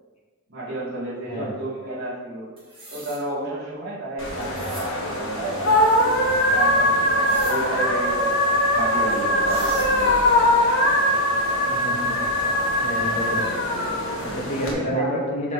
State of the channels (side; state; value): both; normal; correlation -0.04